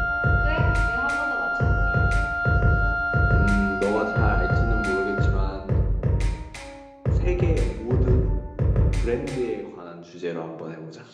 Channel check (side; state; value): both; identical; correlation 1.00